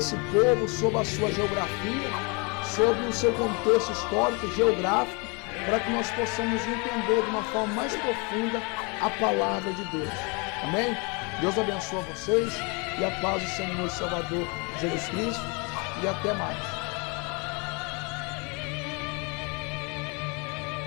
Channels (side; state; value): right; quieter; 31.3 dB